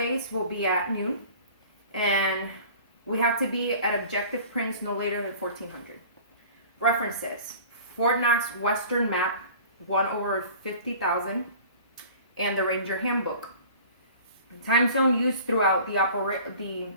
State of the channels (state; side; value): inverted; both; correlation -0.44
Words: will be at noon. And we have to be at objective prints no later than 1400. References: Fort Knox Western Map 1/50,000 and the Ranger Handbook. Time zone used throughout the op